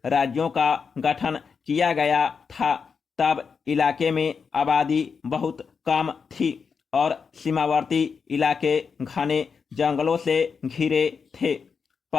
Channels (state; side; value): quieter; right; 5.8 dB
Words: राज्यों का गठन किया गया था, तब इलाके में आबादी बहुत कम थी और सीमावर्ती इलाके घने जंगलों से घिरे थे।